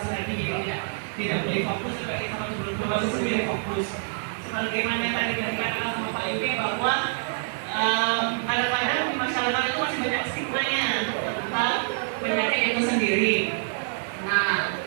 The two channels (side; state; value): left; silent; digital silence